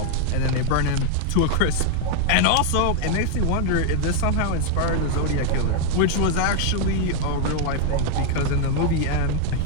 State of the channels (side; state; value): both; different; correlation 0.00